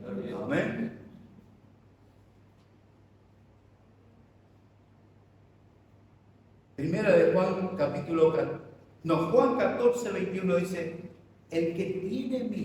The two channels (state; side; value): identical; both; correlation 1.00